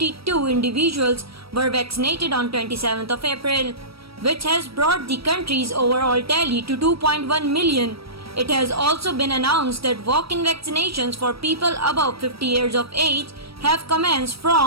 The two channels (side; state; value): left; late; 0.76 ms